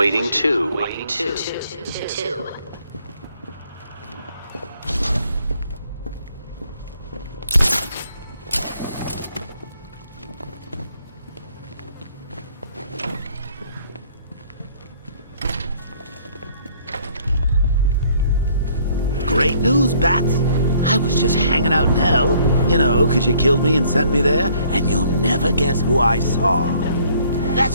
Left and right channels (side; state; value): both; inverted; correlation -0.61